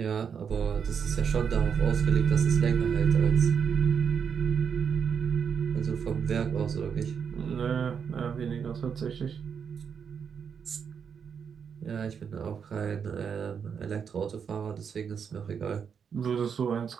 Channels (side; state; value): left; quieter; 6.9 dB